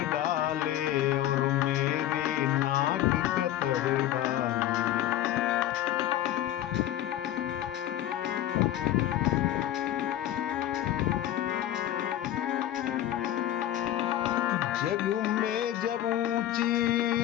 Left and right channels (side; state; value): right; quieter; 12.6 dB